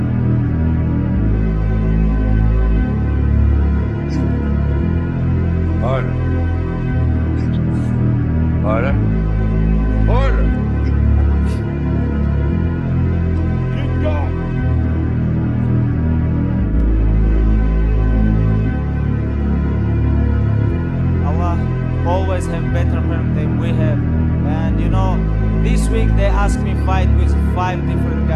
Order. Order. Order. Next week they ask me fight with 5 different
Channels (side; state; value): both; identical; correlation 1.00